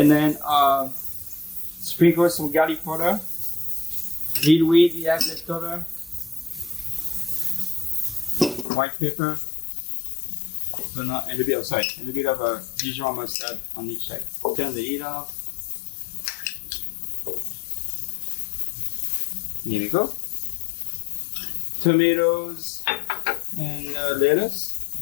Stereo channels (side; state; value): right; drops out; at 8.7 s